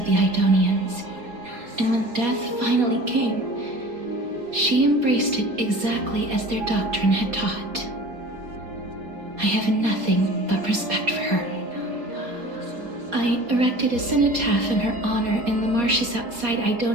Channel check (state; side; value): late; left; 4.2 ms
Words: the Idonians, and when death finally came, she embraced it exactly as their doctrine had taught. I have nothing but respect for her. I erected a cenotaph in her honor in the marshes outside